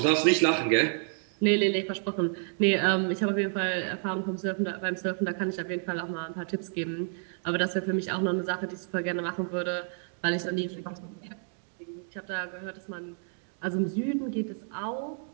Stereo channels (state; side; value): silent; left; 58 dB below the other